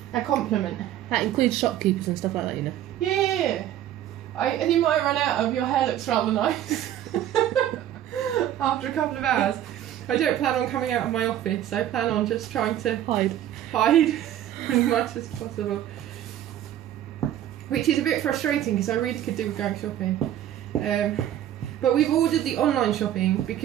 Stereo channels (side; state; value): left; quieter; 11.8 dB